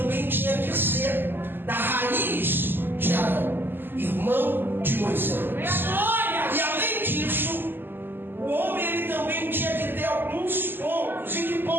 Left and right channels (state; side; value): late; left; 0.096 ms